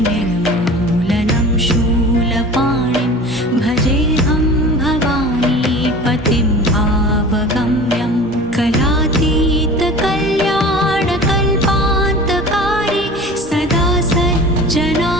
शूलपाणिं भजेऽहं भवानीपतिं भावगम्यं कलातीतकल्याणकल्पान्तकारी सदा सज्जनानन्ददाता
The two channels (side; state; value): both; normal; correlation 0.39